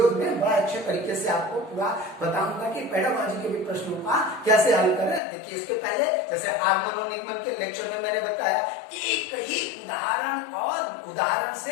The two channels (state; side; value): drops out; right; at 5.2 s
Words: में बड़ा अच्छे तरीके से आपको पूरा बताऊंगा कि पेडागॉजी के भी प्रश्नों का कैसे हल करें। देखिए इसके पहले जैसे आगमन और निगमन के लेक्चर में मैंने बताया, एक ही उदाहरण और उदाहरण